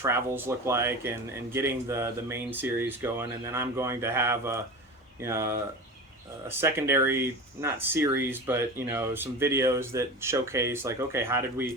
look like, and getting the main series going, and then I'm going to have a secondary, not series, but some videos that showcase, like, okay, how did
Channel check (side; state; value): both; normal; correlation 0.30